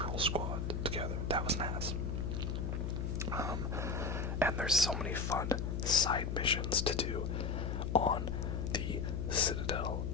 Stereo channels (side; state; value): left; noise; hum, 1 dB below the sound